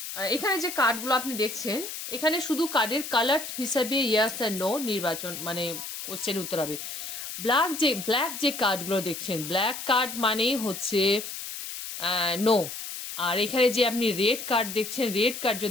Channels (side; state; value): left; noise; hiss, 8 dB below the sound